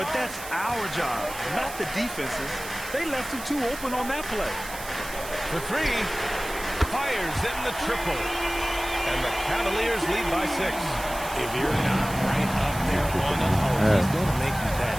that's our job, not the defense's. They left him too open on that play. For 3. Fires in the triple. And the Cavaliers lead by 6. If you're not right up there on him, he's going to make you bet.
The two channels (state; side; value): noise; right; hiss, 12 dB below the sound